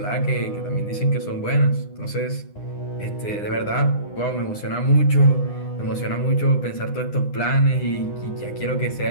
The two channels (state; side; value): late; right; 9.8 ms